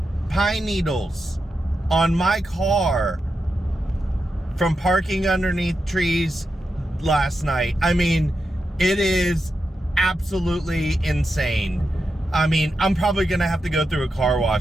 pine needles on my car from parking underneath trees last night. I mean, it is absolutely insane. I mean, I'm probably gonna have to go through a car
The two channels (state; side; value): normal; both; correlation 0.88